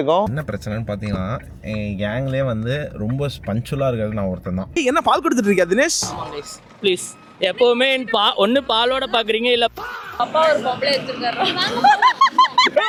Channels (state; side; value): identical; both; correlation 1.00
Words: என்ன பிரச்சனைன்னு பாத்தீங்கன்னா என் கேங்லேயே வந்து ரொம்ப பஞ்சுவலா இருக்கிறது நான் ஒருத்தன் தான். என்ன பால் கொடுத்துட்டு இருக்கியா தினேஷ்? ப்ளீஸ் எப்பவுமே ஒன்னு பாலோட பாக்குறீங்க இல்ல அப்பா ஒரு பொம்பளை எடுத்துருக்காரு.